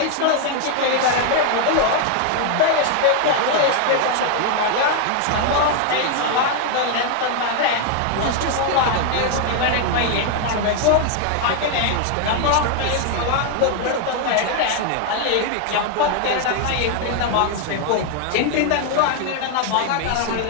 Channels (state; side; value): different; both; correlation 0.00